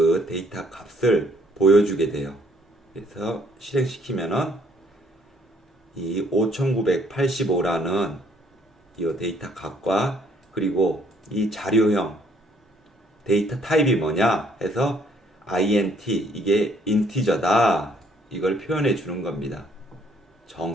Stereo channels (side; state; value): both; normal; correlation 0.64